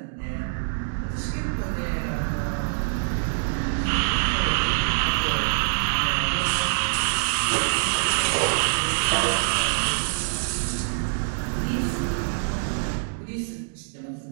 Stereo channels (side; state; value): left; silent; digital silence